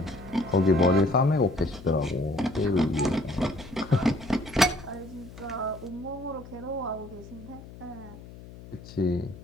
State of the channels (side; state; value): left; noise; hum, 17 dB below the sound